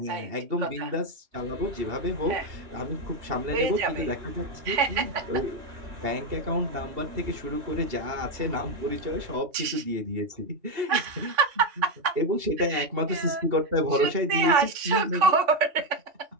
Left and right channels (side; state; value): left; late; 3.5 ms